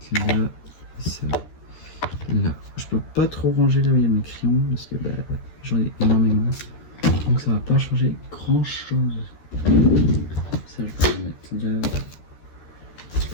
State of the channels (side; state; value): right; late; 13 ms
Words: là. Et ça, là. Je peux pas trop ranger là où il y a mes crayons parce que bah, j'en ai énormément. Donc ça va pas changer grand chose. Ça, je peux le mettre là.